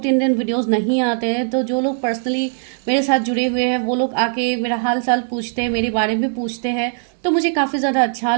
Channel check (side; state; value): left; silent; digital silence